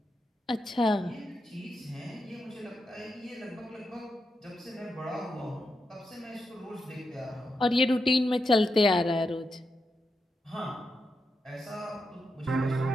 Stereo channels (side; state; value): both; normal; correlation 0.86